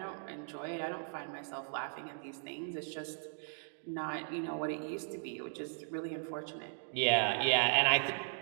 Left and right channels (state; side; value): silent; left; digital silence